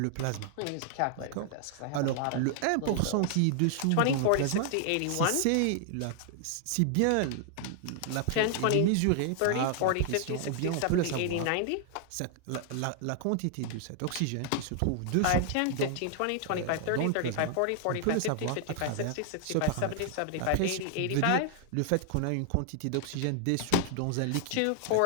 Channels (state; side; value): different; both; correlation 0.00